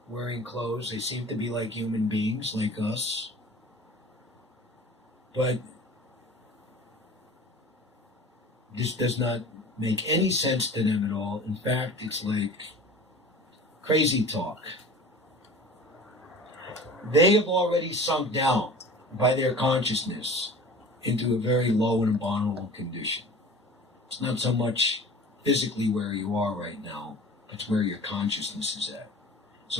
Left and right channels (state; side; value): normal; both; correlation 0.41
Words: wearing clothes. They seem to be like human beings, like us. But this does not make any sense to them at all. In fact, it's like crazy talk. they have already sunk down by their consciousness into a very low and abominable condition. It's not so much physically where you are right now, but it's where your consciousness is at.